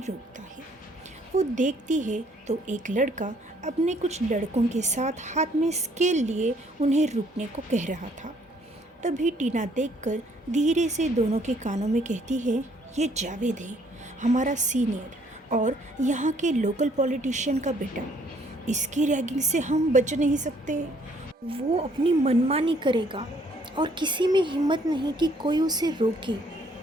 है। वो देखती है तो एक लड़का अपने कुछ लड़कों के साथ हाथ में स्केल लिए उन्हें रुकने को कह रहा था। तभी टीना देखकर धीरे से दोनों के कानों में कहती है, ये जावेद है, हमारा सीनियर और यहाँ के लोकल पॉलिटिशियन का बेटा। इसकी रैगिंग से हम बच नहीं सकते। वो अपनी मनमानी करेगा और किसी में हिम्मत नहीं कि कोई उसे रोके।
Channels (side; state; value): both; normal; correlation 0.64